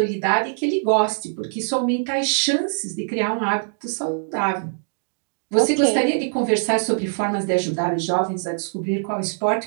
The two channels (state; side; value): silent; left; digital silence